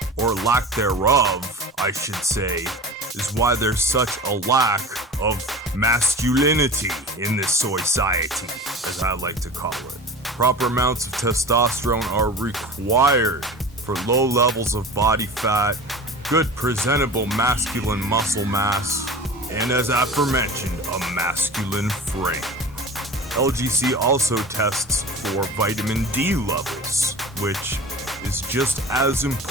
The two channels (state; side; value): normal; both; correlation 0.35